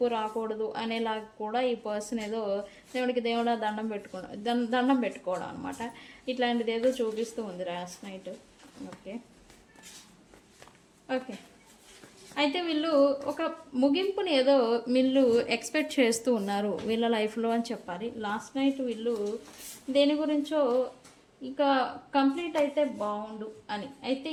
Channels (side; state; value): both; identical; correlation 1.00